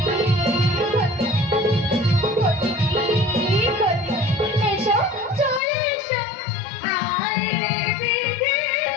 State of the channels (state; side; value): drops out; right; at 5.6 s